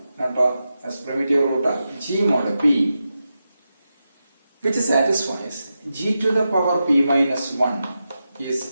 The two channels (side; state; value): both; inverted; correlation -0.90